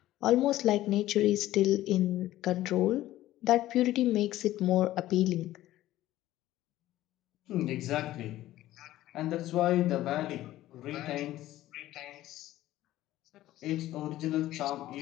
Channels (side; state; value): right; quieter; 14.9 dB